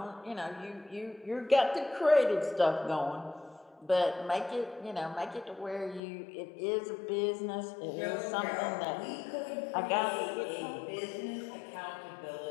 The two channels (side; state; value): right; drops out; at 6.0 s